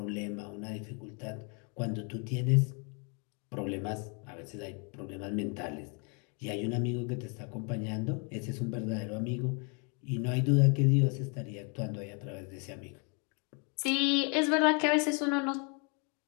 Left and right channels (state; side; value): quieter; right; 35.7 dB